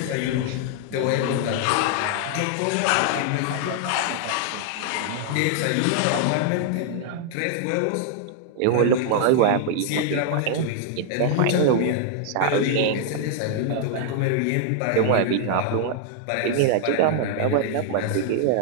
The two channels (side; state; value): both; different; correlation 0.00